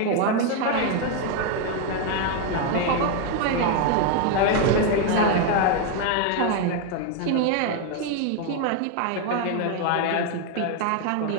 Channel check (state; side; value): different; both; correlation 0.01